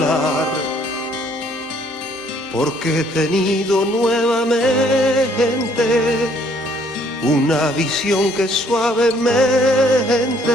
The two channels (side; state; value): both; normal; correlation 0.63